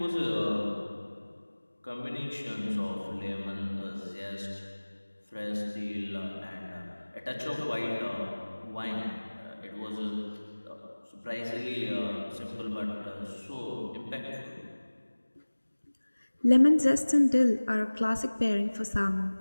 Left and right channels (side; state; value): both; inverted; correlation -1.00